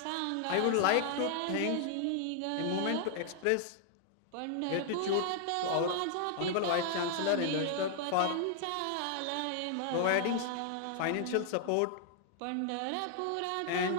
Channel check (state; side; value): different; both; correlation 0.00